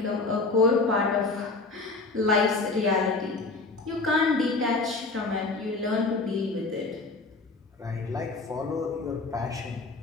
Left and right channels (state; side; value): quieter; right; 3.6 dB